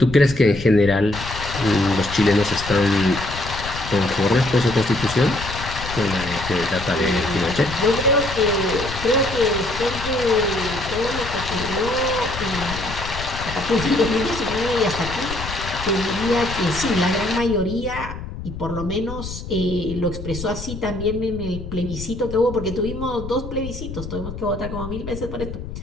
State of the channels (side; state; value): left; noise; rumble, 9 dB below the sound